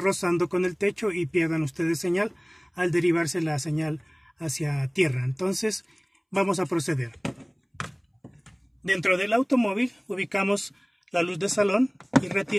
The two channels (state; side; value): identical; both; correlation 1.00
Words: con el techo y pierdan ustedes señal al derivarse la señal hacia tierra. Entonces vamos a proceder. Dentro del automóvil ubicamos la luz de salón y